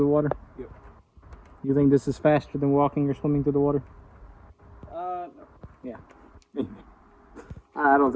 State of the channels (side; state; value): both; identical; correlation 1.00